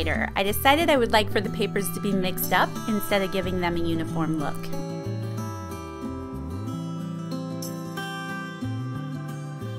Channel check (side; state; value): both; identical; correlation 1.00